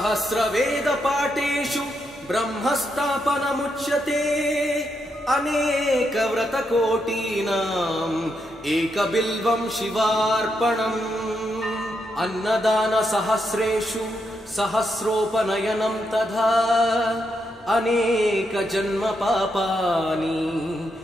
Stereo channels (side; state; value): both; normal; correlation 0.81